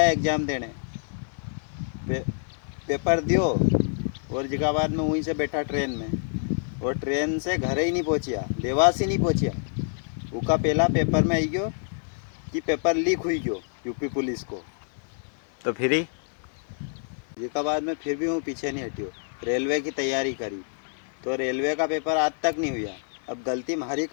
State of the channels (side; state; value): right; silent; digital silence